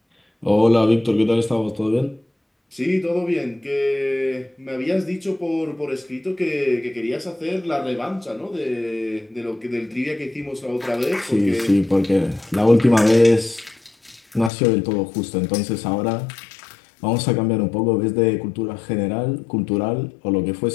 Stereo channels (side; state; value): right; drops out; at 14.5 s